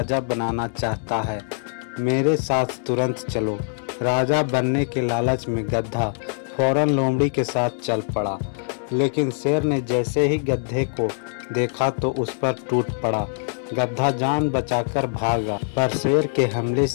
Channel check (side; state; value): right; silent; 63 dB below the other